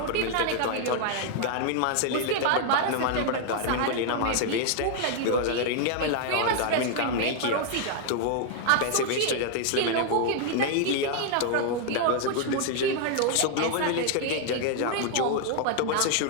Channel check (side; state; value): both; different; correlation 0.00